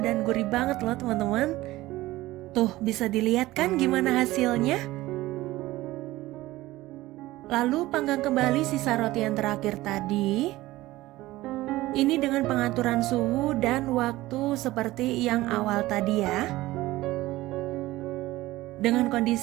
dan gurih banget loh teman-teman. Tuh, bisa dilihat kan gimana hasilnya? Lalu panggang kembali sisa roti yang terakhir tadi. Ini dengan pengaturan suhu dan waktu seperti yang awal tadi ya. Dengan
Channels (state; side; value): quieter; left; 17.6 dB